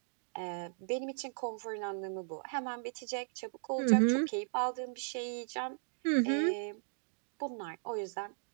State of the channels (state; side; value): silent; left; digital silence